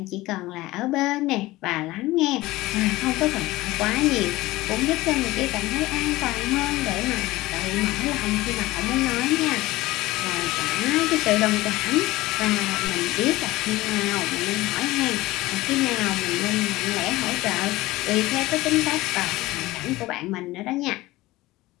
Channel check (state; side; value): quieter; right; 18.7 dB